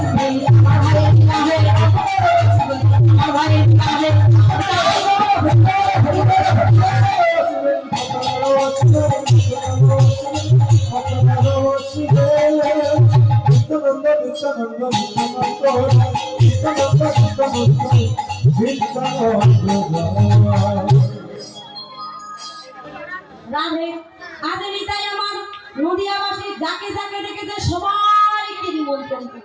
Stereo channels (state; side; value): identical; both; correlation 1.00